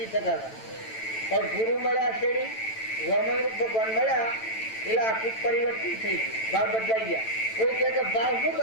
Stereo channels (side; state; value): right; late; 9.0 ms